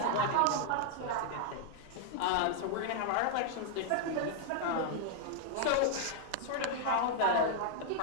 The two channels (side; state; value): both; different; correlation -0.01